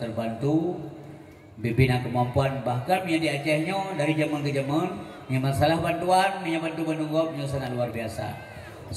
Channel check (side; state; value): both; identical; correlation 1.00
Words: Bibina kemampuan bahkan yang di Acehnya dari zaman ke zaman yang masalah bantuan yang bantu menunggop yang sangat luar biasa.